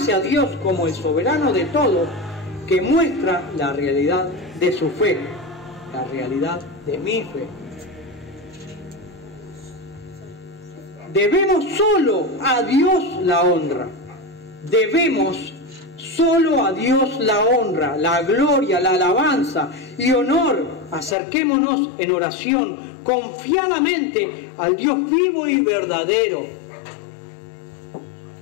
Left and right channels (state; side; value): drops out; right; at 21.2 s